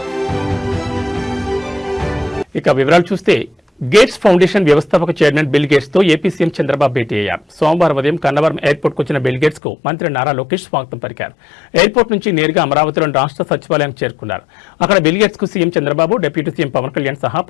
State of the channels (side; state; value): right; drops out; at 9.6 s